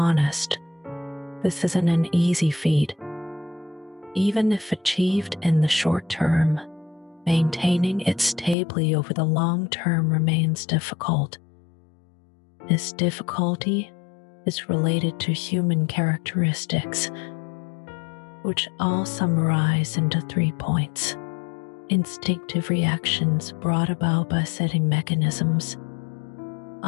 this isn't an easy feat. Even if achieved in the short term, maintaining it stably over the long term remains difficult. This difficulty is related to human characteristics, which I'll summarize into 3 points. Instinctive reactions brought about by setting mechanisms.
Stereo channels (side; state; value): right; drops out; at 8.6 s